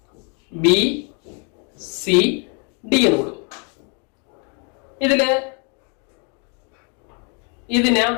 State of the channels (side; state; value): right; quieter; 35.4 dB